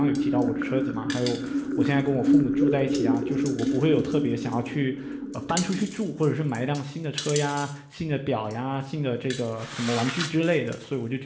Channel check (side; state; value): both; identical; correlation 1.00